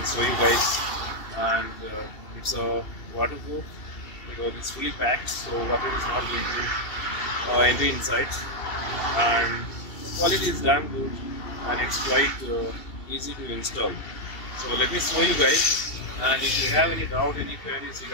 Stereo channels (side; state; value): right; late; 2.7 ms